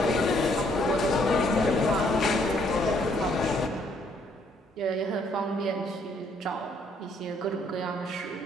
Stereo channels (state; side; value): normal; both; correlation 0.67